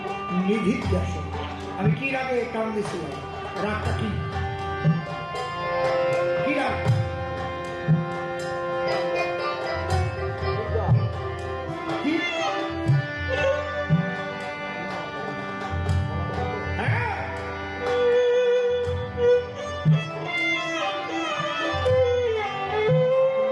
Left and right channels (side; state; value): both; identical; correlation 1.00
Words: নিধিধ্যাসন। আমি কি রাগে টান দিয়েছিলাম? রাগটা কি রাগ?